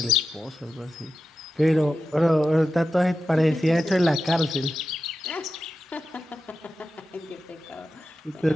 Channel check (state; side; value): normal; both; correlation 0.91